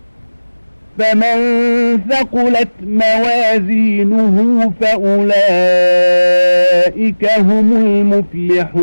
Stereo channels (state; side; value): inverted; both; correlation -1.00